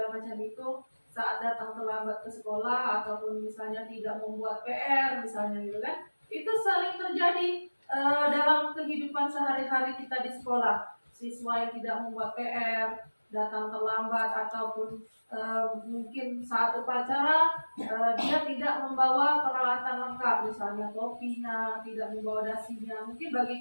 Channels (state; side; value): inverted; both; correlation -1.00